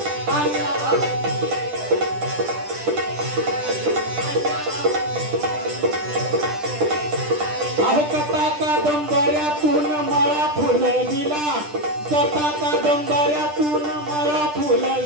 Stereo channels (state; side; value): late; left; 10 ms